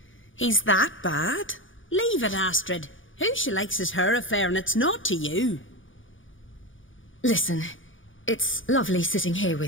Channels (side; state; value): right; late; 0.57 ms